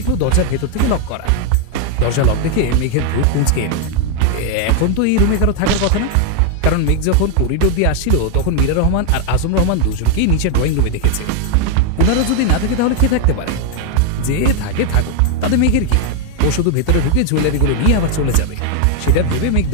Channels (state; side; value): different; both; correlation 0.00